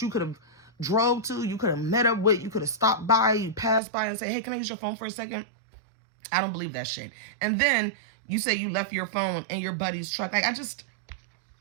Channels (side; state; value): left; drops out; at 3.8 s